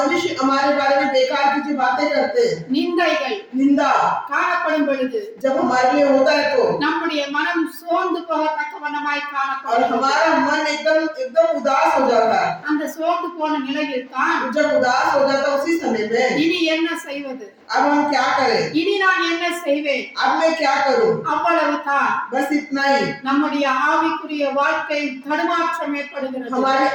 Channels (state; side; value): identical; both; correlation 1.00